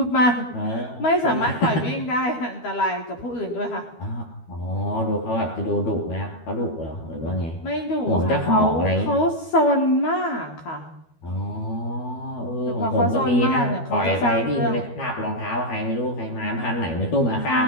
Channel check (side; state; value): right; late; 12 ms